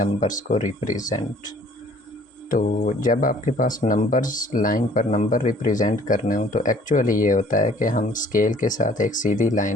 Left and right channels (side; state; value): both; normal; correlation 0.55